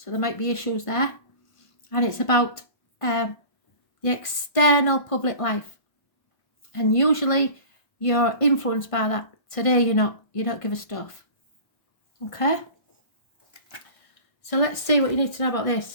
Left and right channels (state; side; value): late; right; 1.5 ms